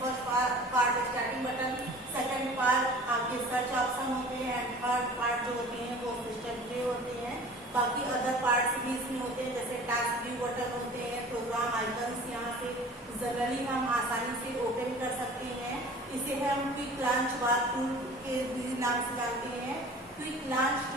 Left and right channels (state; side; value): normal; both; correlation 0.43